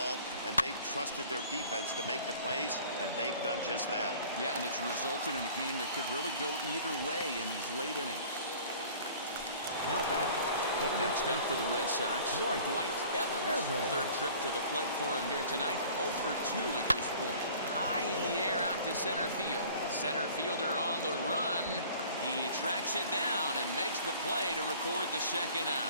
and they've trusted their defense to make the plays, and they've done just that. Yeah, and it's resulted in a game that could really go either way in these late innings. Now batting. Next up for the Red Sox, Dwight Evans. 3rd trip to the plate for him here tonight. 0 for 2 at this point. High in the air out to center field. Center fielder on the run. He tracks it down and makes the play to record the 2nd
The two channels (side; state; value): both; inverted; correlation -0.48